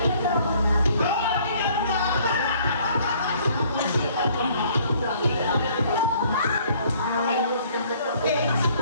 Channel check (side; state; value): both; inverted; correlation -0.59